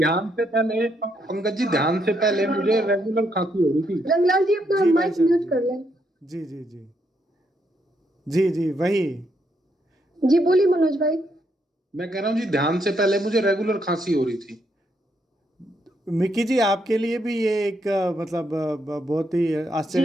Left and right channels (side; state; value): both; normal; correlation 0.76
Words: से पहले, पंकज जी, ध्यान से पहले मुझे रेगुलर खांसी हो रही थी। रंगलाल जी अपना जी भाई माइक साहब म्यूट जी। कर लें। जी जी जी। जी जी वही। जी बोलिए मनोज भाई। मैं कह रहा हूँ जी, ध्यान से पहले मुझे रेगुलर खांसी हो रही थी। मिक्की जी आपके लिए भी ये एक मतलब बहुत ही जी,